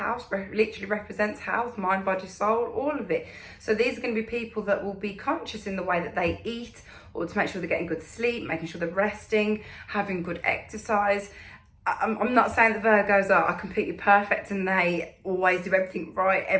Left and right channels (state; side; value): identical; both; correlation 1.00